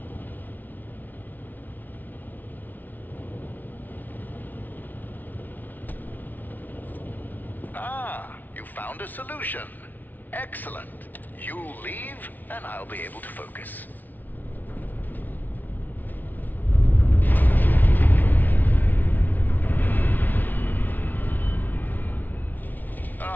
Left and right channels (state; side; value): late; right; 0.082 ms